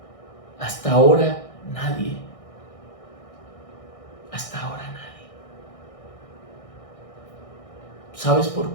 Hasta ahora nadie. Hasta ahora nadie. ¿Sabes por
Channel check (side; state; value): right; late; 1.6 ms